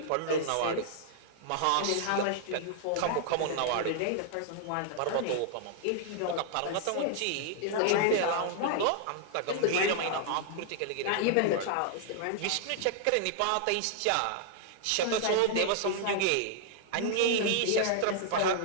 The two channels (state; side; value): different; both; correlation -0.01